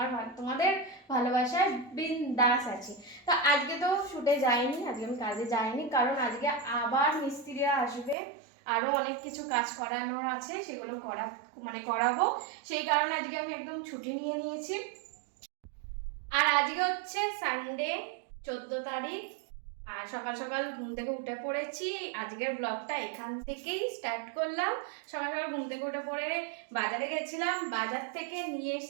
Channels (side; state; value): left; drops out; at 8.2 s